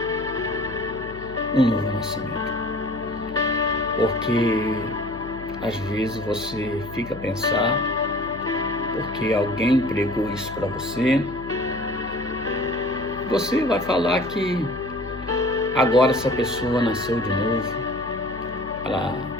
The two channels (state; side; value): noise; left; hum, 14 dB below the sound